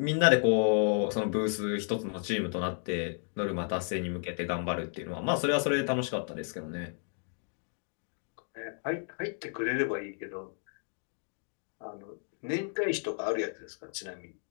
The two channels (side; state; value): right; silent; digital silence